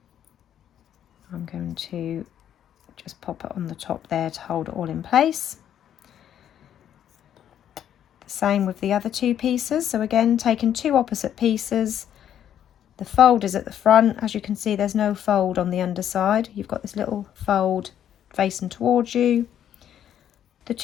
I'm going to just pop it on the top there to hold it all in place. The same with the other 2 pieces. So again, taking 2 opposite pieces, the fold is at the front. As you can see, there's no fold on the underside. You've got this little fold facing towards you, the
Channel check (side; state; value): right; quieter; 10.1 dB